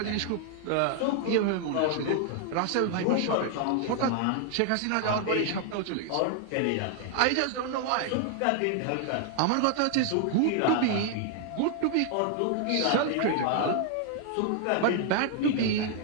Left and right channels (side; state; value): both; different; correlation 0.00